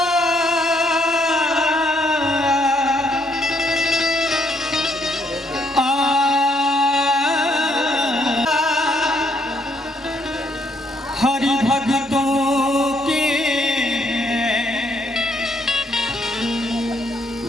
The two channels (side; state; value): both; normal; correlation 0.71